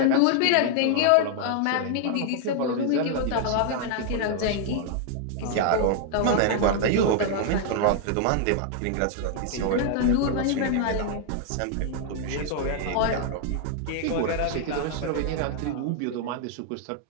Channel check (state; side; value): different; both; correlation 0.00